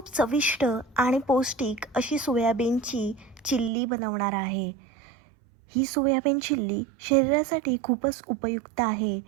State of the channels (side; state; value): left; drops out; at 3.7 s